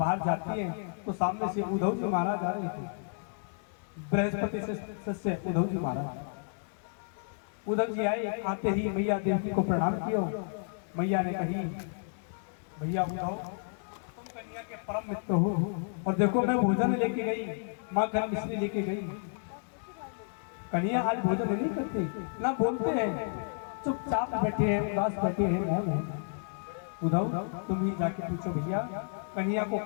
जाती है तो सामने से उद्धव जी महाराज आ रहे थे, बृहस्पति सस्य उद्धव जी महाराज। उद्धव जी आए, आते ही मैया देवी को प्रणाम किया। मैया ने कही, भैया उद्धव तुम कन्हैया के परम मित्र हो और देखो मैं भोजन लेके गई, माँ घर मिश्री लेके गई। कन्हैया आज भोजन नहीं करते, ना बोलते हैं, चुपचाप बैठे हैं, उदास बैठे हैं। उद्धव तुम ही जाके पूछो भैया कन्हैया को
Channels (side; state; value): right; silent; digital silence